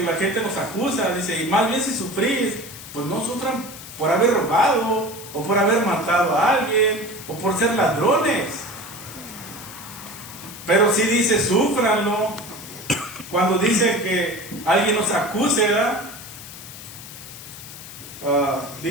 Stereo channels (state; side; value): noise; left; hiss, 14 dB below the sound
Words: la gente nos acusa, dice, y más bien si sufrís, pues no sufran por haber robado, o por haber matado a alguien, o por ser ladrones. Pero sí dice, súfranlo. Cuando dice que alguien nos acuse,